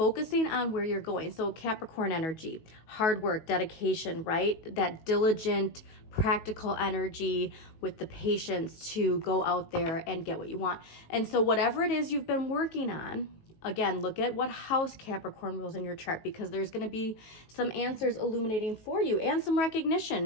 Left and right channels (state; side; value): late; right; 19 ms